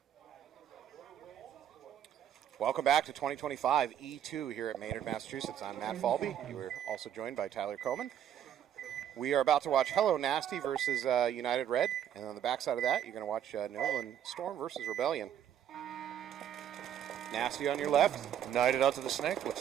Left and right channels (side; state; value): left; quieter; 9.9 dB